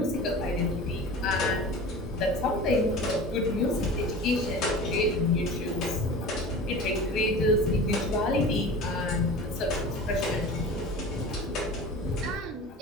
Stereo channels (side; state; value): both; normal; correlation 0.36